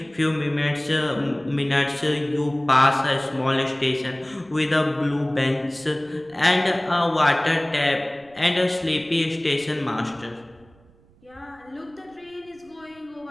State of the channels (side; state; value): right; noise; rumble, 29 dB below the sound